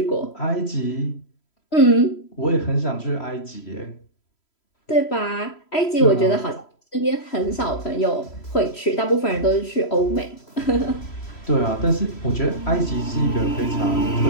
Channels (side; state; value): right; late; 3.1 ms